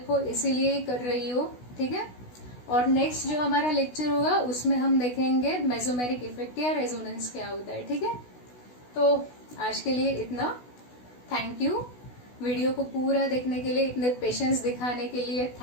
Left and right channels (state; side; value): late; right; 16 ms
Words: हो इसीलिए ही कर रही हूँ, ठीक है। और नेक्स्ट जो हमारा लेक्चर होगा उसमें हम देखेंगे मेसोमेरिक इफेक्ट या रेजोनेंस क्या होता है, ठीक है। तो आज के लिए इतना, थैंक यू। वीडियो को पूरा देखने के लिए, इतने पेशेंस दिखाने के लिए